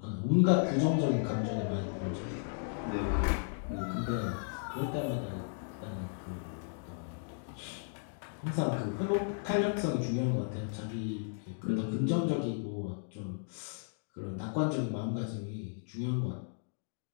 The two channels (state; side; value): silent; right; digital silence